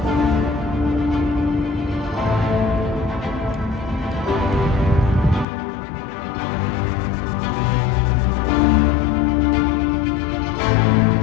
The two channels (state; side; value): drops out; right; at 5.5 s